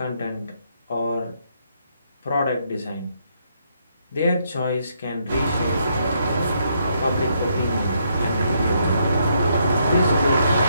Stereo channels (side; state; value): both; inverted; correlation -0.74